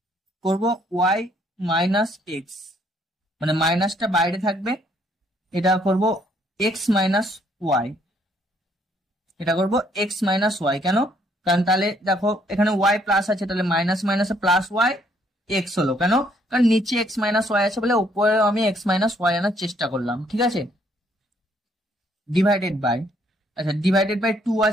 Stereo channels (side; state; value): both; normal; correlation 0.67